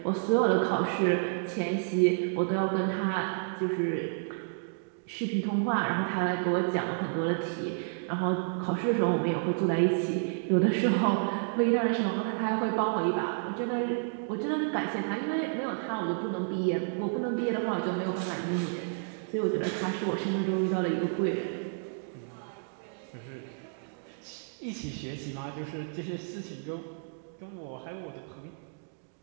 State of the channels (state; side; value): silent; left; digital silence